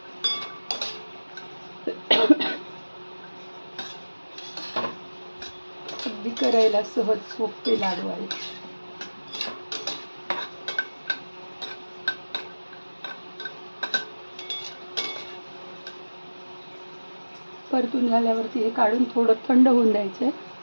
अगदी करायला सहज सोपे लाडू आहेत. परतून झाल्यावरती हे काढून थोडं थंड होऊन द्यायचं.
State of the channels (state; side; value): inverted; both; correlation -1.00